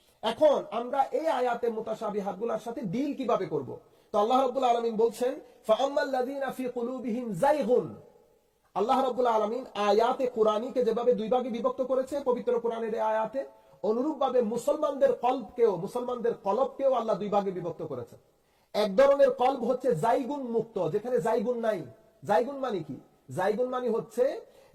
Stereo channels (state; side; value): identical; both; correlation 1.00